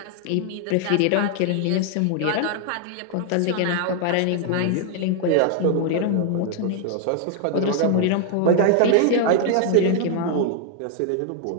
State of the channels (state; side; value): different; both; correlation 0.00